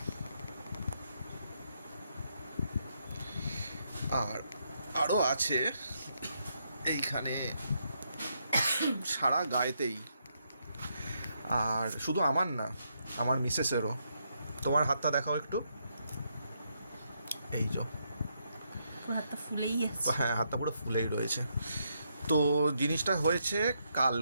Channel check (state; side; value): inverted; both; correlation -0.78